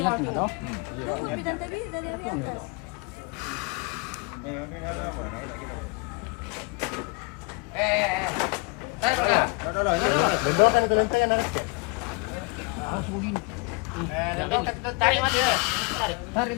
toh. Belum kan paling tekan nanti. Tarik mati. Tarik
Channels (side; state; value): right; quieter; 29.4 dB